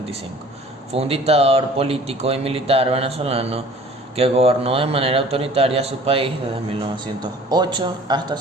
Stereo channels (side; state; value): both; normal; correlation 0.48